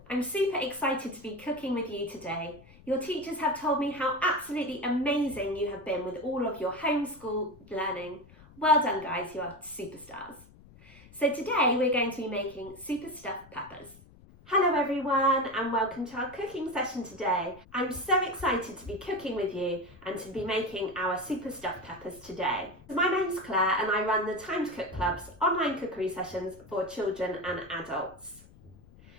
I'm super excited to be cooking with you today. Your teachers have told me how absolutely amazing you have been with all of your homeschool learning. Well done guys, you are superstars. So today we're going to be making super stuffed peppers. Hello everyone and welcome to our cooking session today. I'm so excited to be cooking with you and to be making our super stuffed peppers today. My name's Claire and I run the Time to Cook Club's online cookery sessions for children and adults.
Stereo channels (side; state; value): left; noise; rumble, 23 dB below the sound